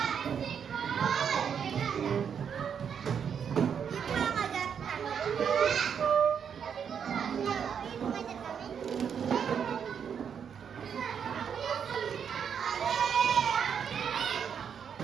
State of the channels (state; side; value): quieter; left; 7.5 dB